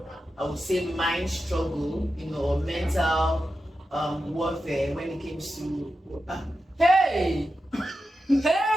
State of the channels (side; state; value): both; normal; correlation 0.90